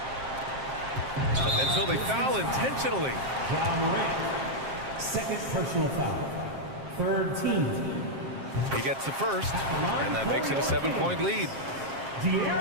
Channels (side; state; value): left; late; 7.5 ms